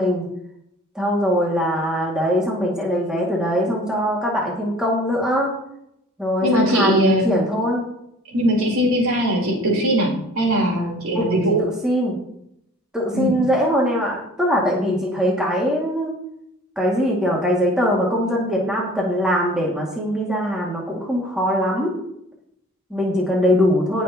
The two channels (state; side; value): normal; both; correlation 0.49